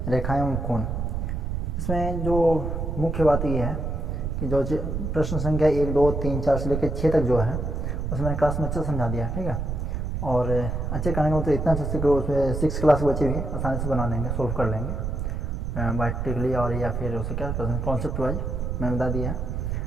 रेखाएं एवं कोण। इसमें जो मुख्य बात ये है कि जो प्रश्न संख्या 1, 2, 3, 4 से लेकर 6 तक जो है उसमें मैंने क्लास में अच्छे समझा दिया, ठीक है। और अच्छे करने का मतलब इतना अच्छे कि उसमें 6 क्लास के बच्चे भी आसानी से बना लेंगे, सोल्व कर लेंगे बायोटिकली और या फिर उसे क्या कॉन्सेप्ट वाइज मैंने बता दिया है।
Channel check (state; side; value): noise; right; rumble, 2 dB below the sound